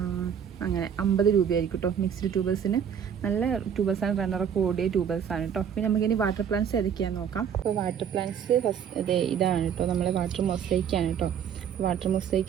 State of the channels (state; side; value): quieter; left; 8.1 dB